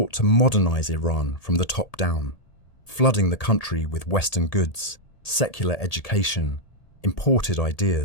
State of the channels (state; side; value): late; right; 1.8 ms